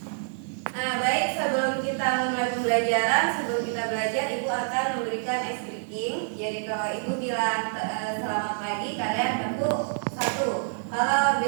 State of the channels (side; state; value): left; silent; digital silence